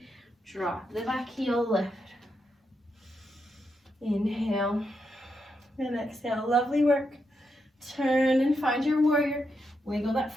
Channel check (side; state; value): both; normal; correlation 0.83